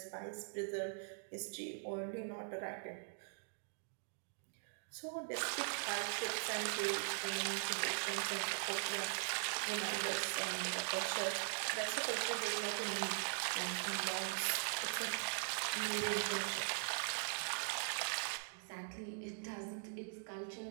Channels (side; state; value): left; silent; digital silence